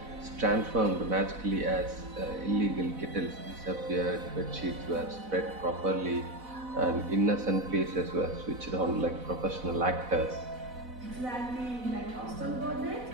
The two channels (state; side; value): late; left; 4.0 ms